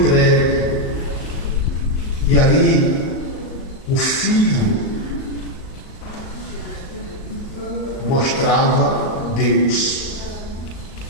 E ali, o Filho mostrava Deus.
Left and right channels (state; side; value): late; right; 38 ms